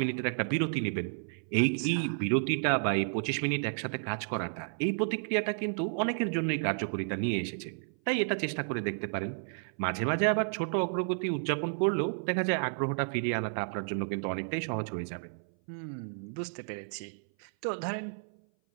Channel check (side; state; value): left; silent; 57 dB below the other